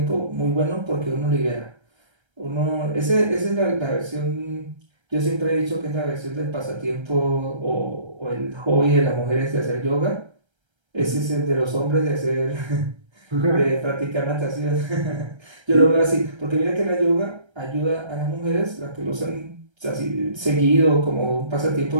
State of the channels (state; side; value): late; left; 1.3 ms